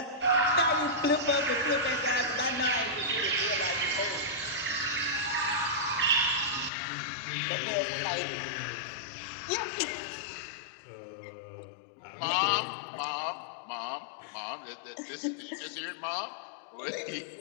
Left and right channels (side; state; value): right; drops out; at 6.7 s